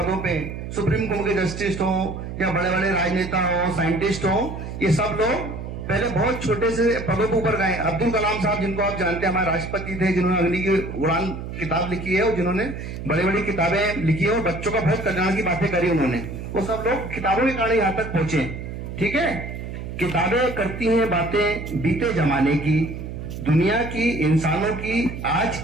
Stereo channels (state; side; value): noise; right; hum, 8 dB below the sound